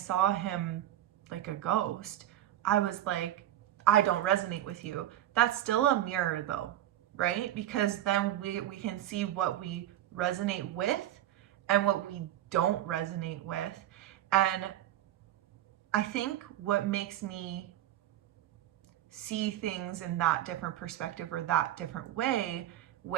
him like a ghost, I was like, I don't resonate with you. That's still a mirror though, right? Because then we can see what we resonate with and what we don't resonate with. And I think what makes me see things in that different perspective or that different way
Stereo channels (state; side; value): quieter; left; 12.8 dB